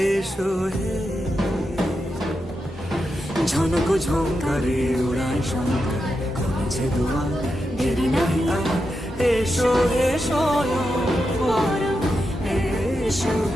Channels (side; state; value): both; normal; correlation 0.87